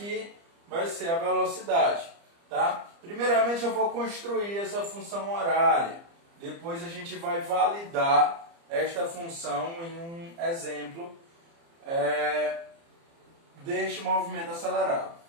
vai ser a velocidade. Tá? Primeiramente eu vou construir essa função horária. Depois a gente vai validar esta função em um exemplo deste movimento acelerado.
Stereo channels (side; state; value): left; late; 30 ms